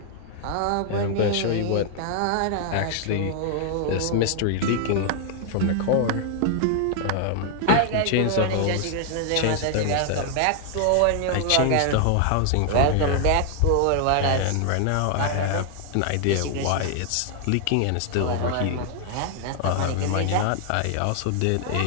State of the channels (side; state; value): both; different; correlation 0.00